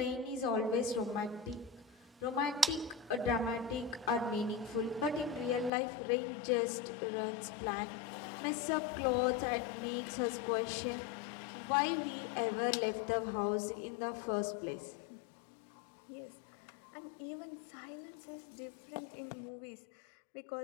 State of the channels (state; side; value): drops out; right; at 5.7 s